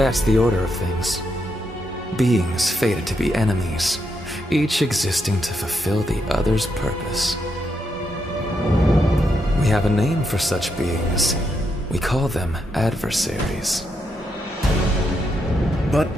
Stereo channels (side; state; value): both; normal; correlation 0.81